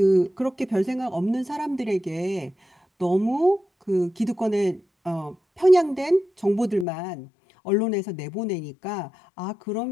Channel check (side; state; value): right; drops out; at 6.9 s